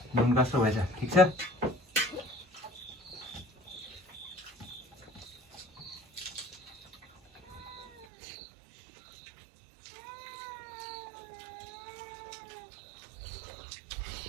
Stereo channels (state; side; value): drops out; left; at 8.1 s